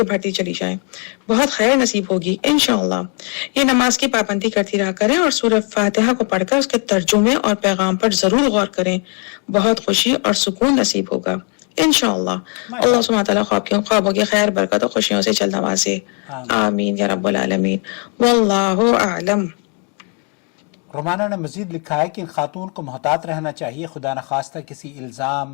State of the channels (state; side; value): quieter; right; 38.3 dB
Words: بڑھتی چلی جائیں، بہت خیر نصیب ہوگی انشاءاللہ۔ یہ نماز کی پابندی کرتی رہا کریں اور سورہ فاتحہ کو پڑھ کر اس کے ترجمے اور پیغام پر ضرور غور کریں، بہت خوشی اور سکون نصیب ہوگا انشاءاللہ۔ اللہ سبحانہ تعالیٰ خوابوں کی خیر، برکت اور خوشیوں سے جلد نوازے، آمین یا رب العالمین، واللہ اعلم۔ رومانہ نے مزید لکھا ہے کہ ان خاتون کو محتاط رہنا چاہیے، خدا نخواستہ کسی